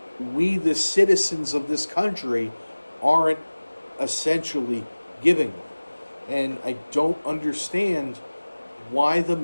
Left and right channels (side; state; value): both; inverted; correlation -1.00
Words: we, the citizens of this country, aren't essentially giving them. And I don't understand why the